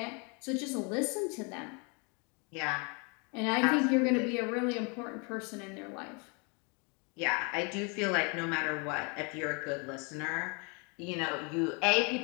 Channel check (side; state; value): right; quieter; 33.1 dB